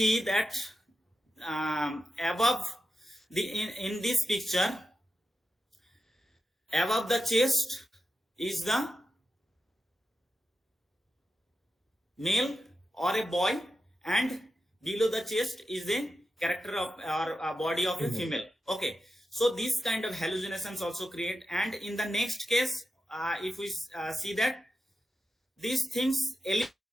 that above the in this picture, above the chest is the male or a boy, and below the chest is the character of or body of a female. Okay, so this kind of hallucinations also create. And in the next case, if we see that these things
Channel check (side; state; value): both; normal; correlation 0.89